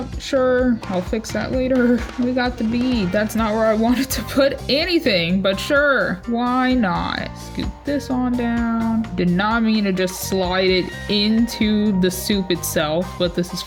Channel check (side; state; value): both; identical; correlation 1.00